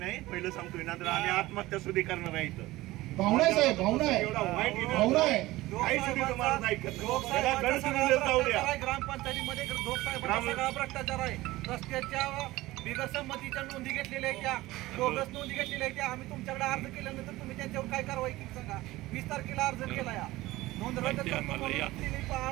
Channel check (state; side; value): quieter; left; 18.3 dB